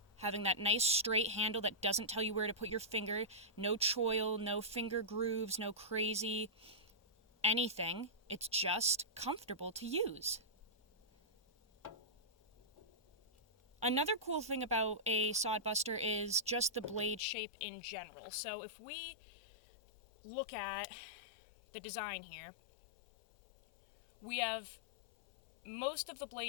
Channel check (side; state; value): right; drops out; at 17.2 s